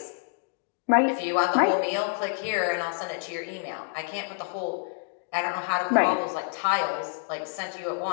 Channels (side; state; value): right; silent; 60 dB below the other